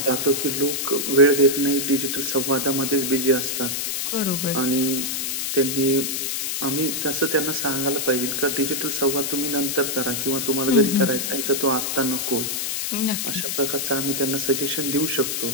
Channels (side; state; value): left; noise; hiss, 1 dB below the sound